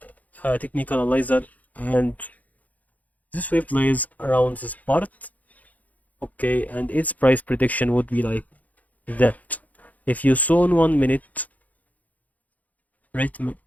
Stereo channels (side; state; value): right; late; 0.076 ms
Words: a technical analyzer, and this wave plays around this part. Okay, and its price prediction would be like that. If you saw in 1 minute rhythm,